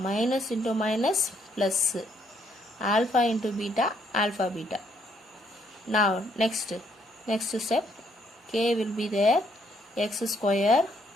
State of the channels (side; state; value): both; normal; correlation 0.70